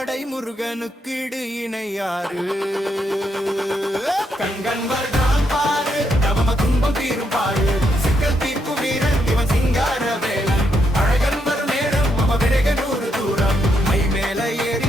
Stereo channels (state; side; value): normal; both; correlation 0.78